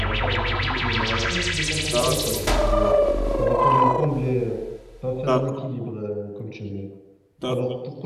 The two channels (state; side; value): identical; both; correlation 1.00